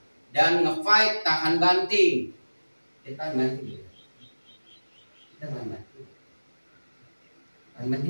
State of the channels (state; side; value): inverted; both; correlation -1.00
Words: dan nge-fight, tahan banting. Kita tahan banting. Kita tahan banting. Tahan banting